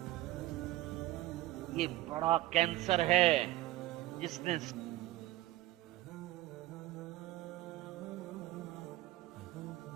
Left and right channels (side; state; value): left; quieter; 16.7 dB